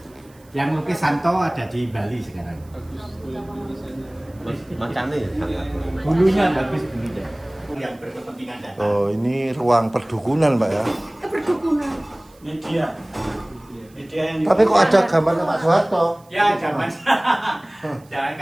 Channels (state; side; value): noise; right; hiss, 30 dB below the sound